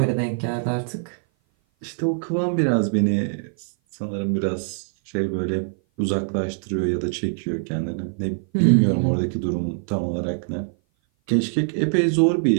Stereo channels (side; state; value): left; silent; 57 dB below the other